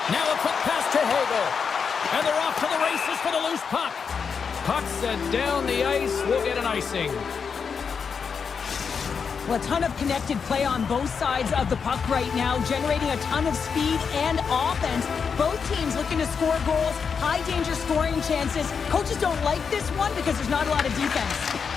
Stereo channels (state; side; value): quieter; right; 6.1 dB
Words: Now a quick pass to Hagel. And they're off to the races for the loose puck. Puck set down the ice. We'll get an icing. Well, a ton of connected play on both sides of the puck right now, generating a ton of speed and offense. Both teams looking to score goals, high-danger scoring chances. Coaches don't like this one because there's not a lot of defense.